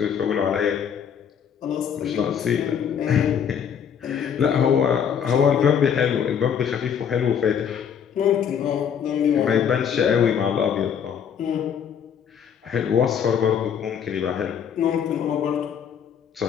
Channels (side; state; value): right; quieter; 8.0 dB